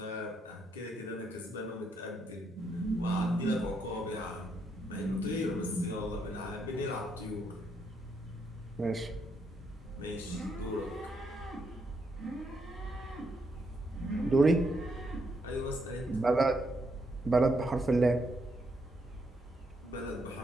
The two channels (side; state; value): both; normal; correlation 0.77